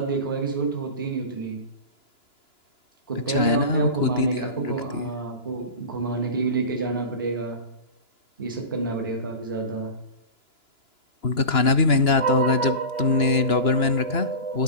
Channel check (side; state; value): right; late; 2.9 ms